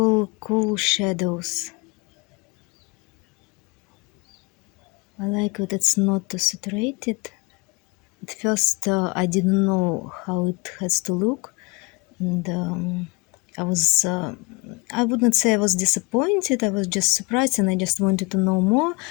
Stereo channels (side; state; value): right; quieter; 27.3 dB